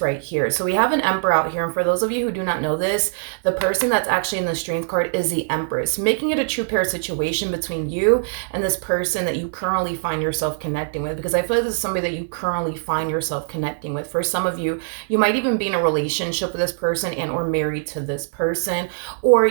right here. So we have an Emperor out here, and for those of you who do not know this, the person that's actually in the Strength card is the Empress, making it a true pair situation between you and this person that you currently find yourself connecting with, because I feel like this is somebody that you currently find yourself connecting with. For some of you, you might even be in a relationship with this person and or married to this person, or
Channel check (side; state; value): left; silent; 64 dB below the other